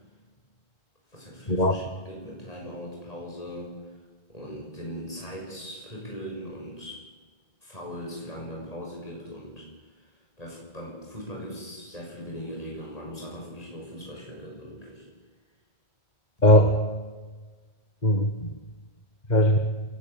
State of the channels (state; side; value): late; right; 1.9 ms